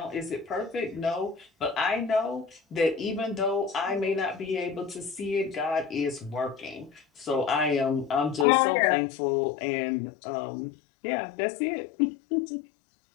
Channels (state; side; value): drops out; right; at 8.5 s